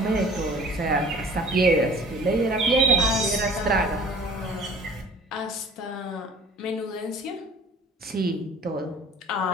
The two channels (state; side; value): normal; both; correlation 0.47